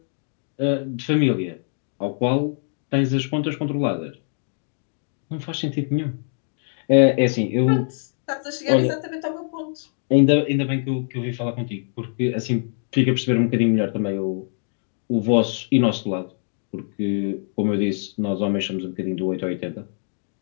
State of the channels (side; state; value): right; silent; digital silence